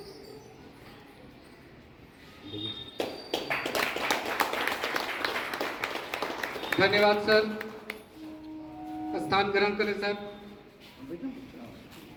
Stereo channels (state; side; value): identical; both; correlation 1.00